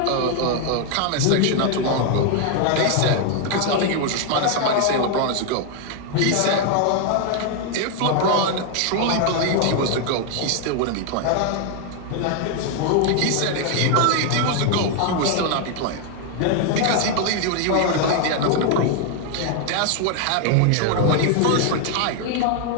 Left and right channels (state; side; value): different; both; correlation 0.01